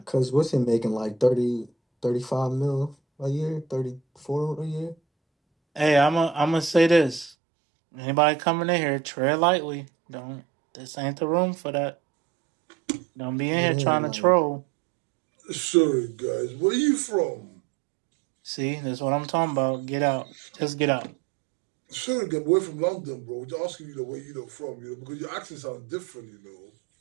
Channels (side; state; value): left; drops out; at 7.3 s